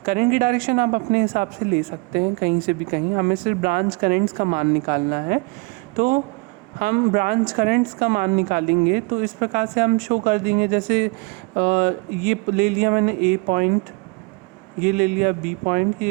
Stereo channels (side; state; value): left; quieter; 28.8 dB